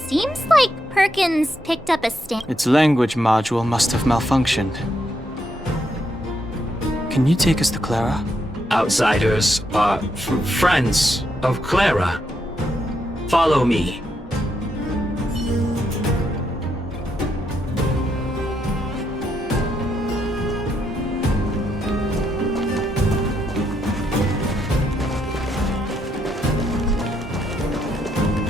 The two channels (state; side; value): normal; both; correlation 0.79